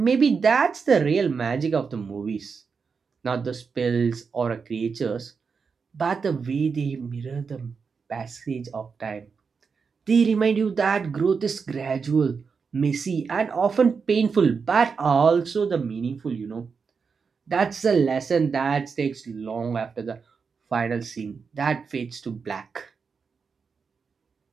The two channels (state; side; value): quieter; left; 5.5 dB